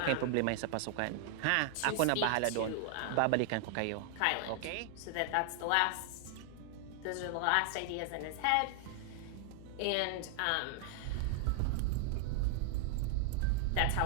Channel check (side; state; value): both; different; correlation 0.00